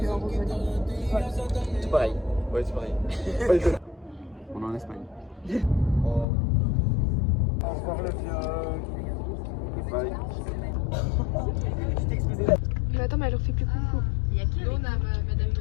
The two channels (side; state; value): right; drops out; at 6.2 s